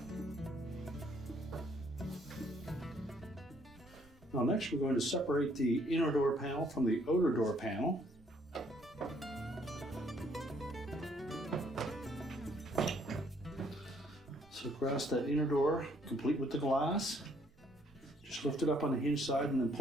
Now next we're going to separate the inner door panel from the odor door panel. So grasp that inner door, complete with the glass. Just lift it up on the hinge side and then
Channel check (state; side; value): noise; right; rumble, 27 dB below the sound